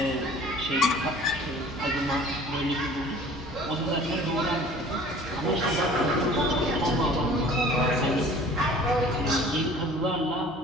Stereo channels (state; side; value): normal; both; correlation 0.48